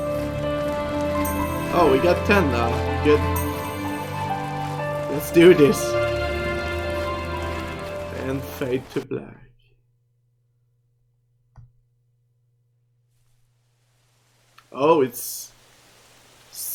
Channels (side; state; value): both; identical; correlation 1.00